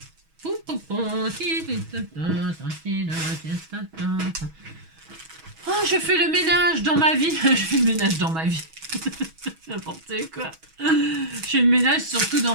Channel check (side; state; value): left; late; 6.2 ms